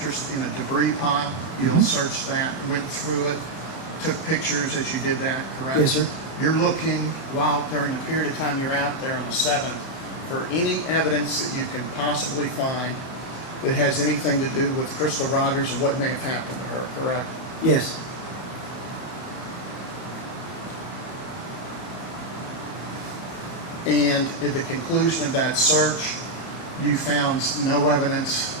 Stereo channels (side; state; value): right; late; 31 ms